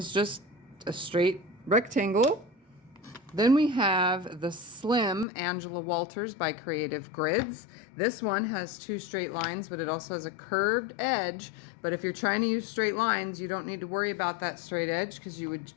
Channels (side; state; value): right; drops out; at 5.2 s